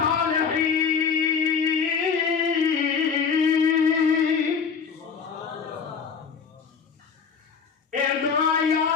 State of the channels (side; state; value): right; quieter; 6.1 dB